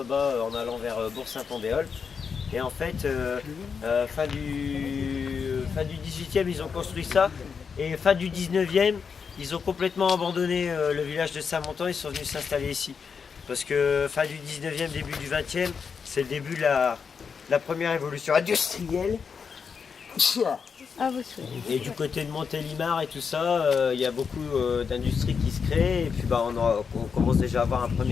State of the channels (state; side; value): quieter; right; 6.0 dB